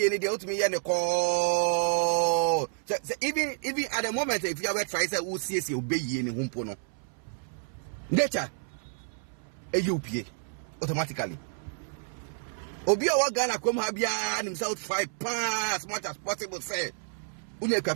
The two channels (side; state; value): left; silent; 58 dB below the other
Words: any the ultimate and the call? So even at the moment, if you have tried to see obey any humpono. Nature a UPA automatically. Obia Wagana come Habia and himself 5 pounds as much as possible. Say, Unia